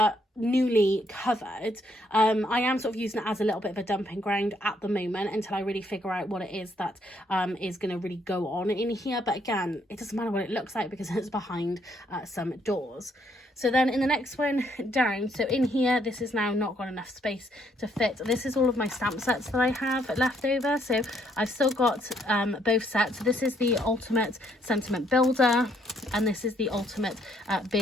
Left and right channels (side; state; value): both; normal; correlation 0.70